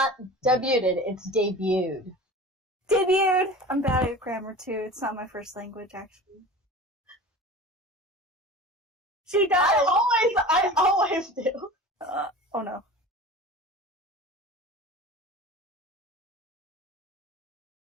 debuted, it's debuted. Debuted! I'm bad at grammar too. It's not my first language, actually. She does! I always do. Oh no.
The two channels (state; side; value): normal; both; correlation 0.36